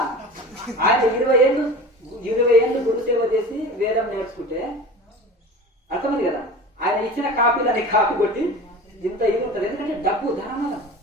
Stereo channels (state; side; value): normal; both; correlation 0.35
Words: ఆయన 20 ఏళ్ళు గురుసేవ చేసి వేదం నేర్చుకుంటే అర్థమైంది కదా. ఆయన ఇచ్చిన కాపీలని కాపీ కొట్టి ఇంత ఇది ఉంటుంది. ఎందుకంటే డబ్బు